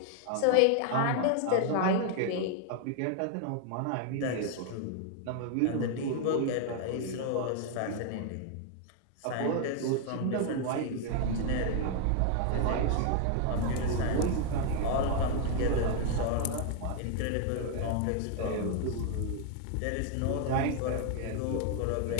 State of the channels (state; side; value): different; both; correlation 0.00